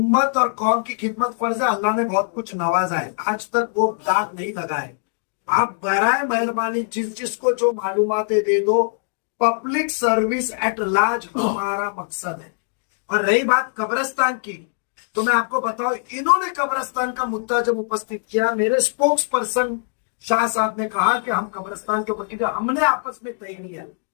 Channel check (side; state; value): right; silent; 64 dB below the other